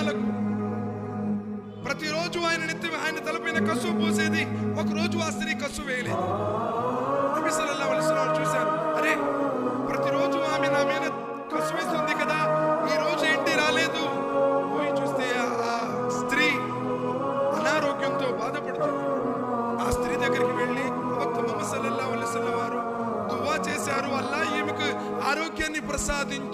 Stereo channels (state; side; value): identical; both; correlation 1.00